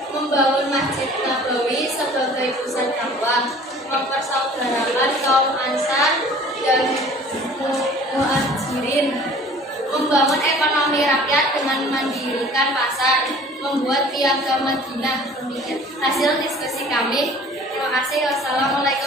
membangun Masjid Nabawi sebagai pusat dakwah, mempersaudarakan kaum Ansar dan Muhajirin, membangun ekonomi rakyat dengan mendirikan pasar, membuat piagam Madinah. Demikian hasil diskusi kami. Terima kasih.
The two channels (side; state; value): both; normal; correlation 0.48